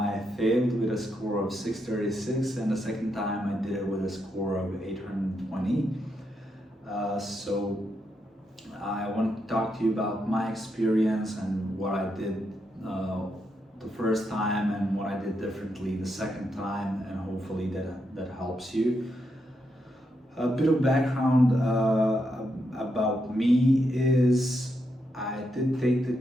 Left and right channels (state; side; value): normal; both; correlation 0.82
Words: failed with a score of 636 and the second time I did it with a score of 820. So I want to talk to you about my experience and what I did the first time and what I did differently the second time, and hopefully that helps you. A bit of background about me is I did take the